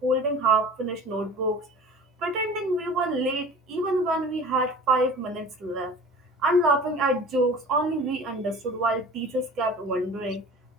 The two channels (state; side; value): normal; both; correlation 0.41